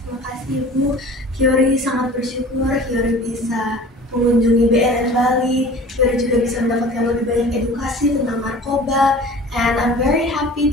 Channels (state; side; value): normal; both; correlation 0.43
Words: terima kasih Ibu. Yori sangat bersyukur Yori bisa mengunjungi BNN Bali. Yori juga bisa mendapatkan lebih banyak edukasi tentang narkoba. And I'm very happy